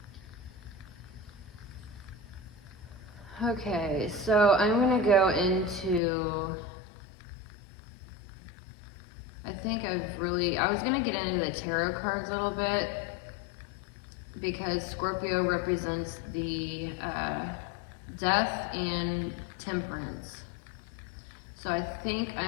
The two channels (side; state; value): right; drops out; at 6.0 s